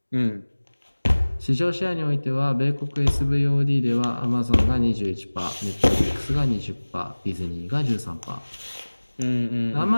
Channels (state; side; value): inverted; both; correlation -1.00